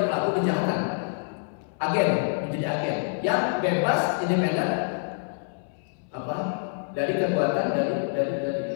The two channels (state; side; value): silent; right; 61 dB below the other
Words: pelaku kejahatan, agen, menjadi agen yang bebas independen apa dari kekuatan dari